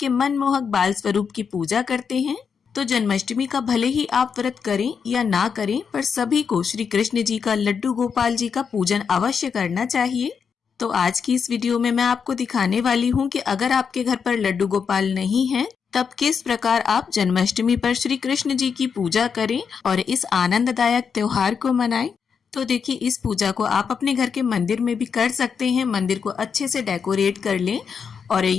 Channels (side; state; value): right; quieter; 6.4 dB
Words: मनमोहक बाल स्वरूप की पूजा करते हैं। तो जन्माष्टमी का भले ही आप व्रत करें या ना करें, पर सभी को श्री कृष्ण जी का लड्डू गोपाल जी का पूजन अवश्य करना चाहिए। तो आज की इस वीडियो में मैं आपको दिखाने वाली हूँ कि अगर आपके घर पर लड्डू गोपाल नहीं है तब किस प्रकार आप जन्माष्टमी पर श्री कृष्ण जी की पूजा करें और इस आनंददायक त्योहार को मनाएं। तो देखिए, इस पूजा को आप अपने घर के मंदिर में भी कर सकते हैं। मंदिर को अच्छे से डेकोरेट कर लें और